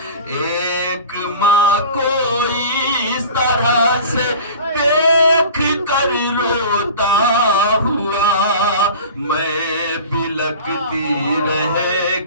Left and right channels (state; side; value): inverted; both; correlation -0.38